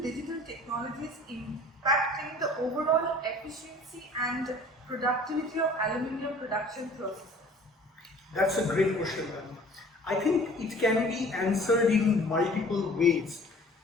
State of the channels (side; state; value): both; normal; correlation 0.49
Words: digital technologies impacting the overall efficiency and productivity of aluminium production processes? That's a great question, ma'am. I think it can be answered in multiple ways,